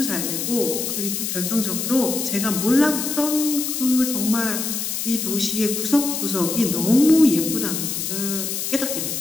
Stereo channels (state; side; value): noise; left; hiss, 3 dB below the sound